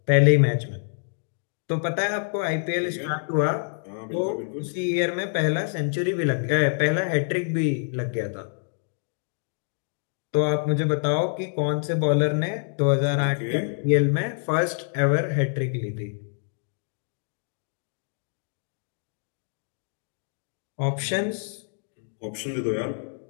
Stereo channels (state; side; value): silent; right; digital silence